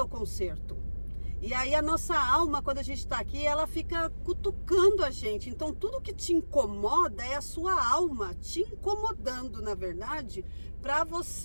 conserto. E aí a nossa alma, quando a gente está aqui, ela fica cutucando a gente. Então tudo que te incomoda é a sua alma te incomodando, na verdade, para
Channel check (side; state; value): both; inverted; correlation -1.00